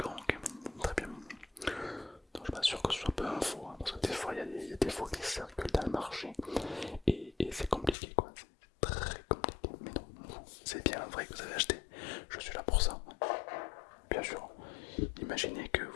ok, très bien. Donc, je suis pas sûr que ce soit peu info, hein, parce que des fois il y a des faux qui circulent dans le marché et c'est compliqué, quoi. C'est très compliqué. Mais non, c'est bien vrai que vous avez acheté. Je suis là pour ça. Bien sûr. Imaginez que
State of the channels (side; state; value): right; drops out; at 8.0 s